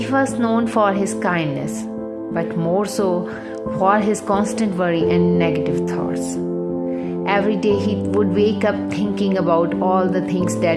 was known for his kindness, but more so for his constant worry and negative thoughts. Every day he would wake up thinking about all the things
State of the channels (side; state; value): both; identical; correlation 1.00